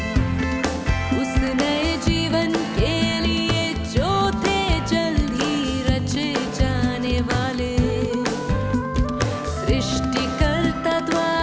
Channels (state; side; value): identical; both; correlation 1.00